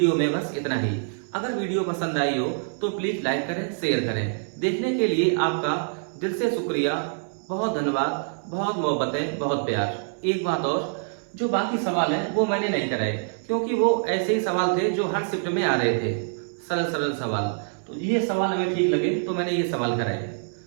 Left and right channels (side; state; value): left; silent; 61 dB below the other